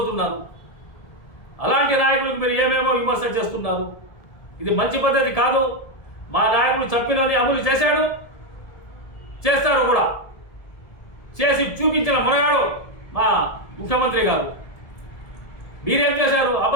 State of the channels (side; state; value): right; late; 1.7 ms